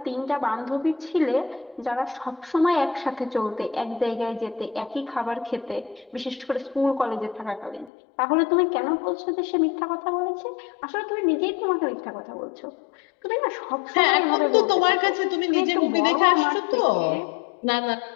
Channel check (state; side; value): drops out; right; at 7.9 s